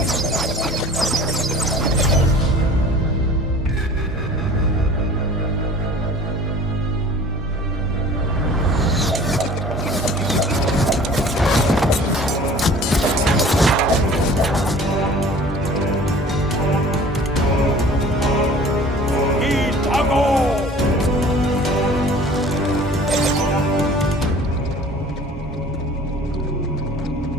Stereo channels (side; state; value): both; normal; correlation 0.46